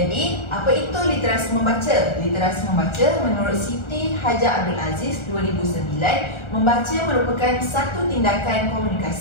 apa itu literasi membaca? Literasi membaca menurut Siti Hajar Abdul Aziz 2009, membaca merupakan satu tindakan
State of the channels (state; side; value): late; right; 1.4 ms